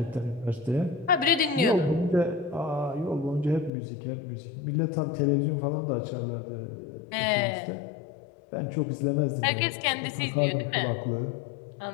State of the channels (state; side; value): drops out; right; at 3.7 s